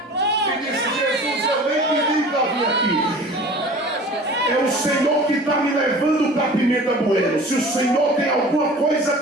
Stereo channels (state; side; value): normal; both; correlation 0.42